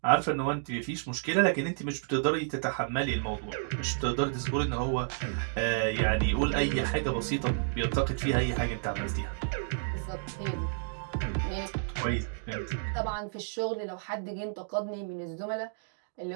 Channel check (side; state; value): left; silent; digital silence